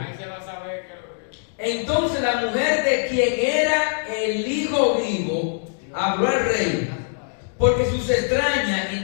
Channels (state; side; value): silent; right; digital silence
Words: Ahí se va a saber que Entonces la mujer de quien era el hijo vivo habló al rey, porque sus